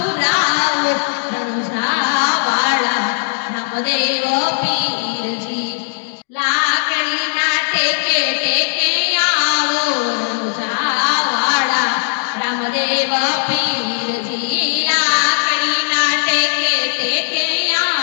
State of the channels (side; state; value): right; silent; digital silence